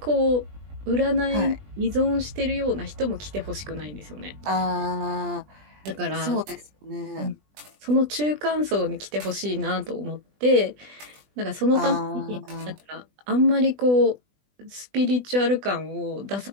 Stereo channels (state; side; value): late; left; 20 ms